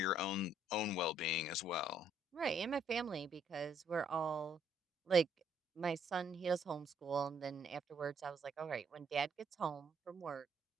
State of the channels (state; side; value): normal; both; correlation 0.69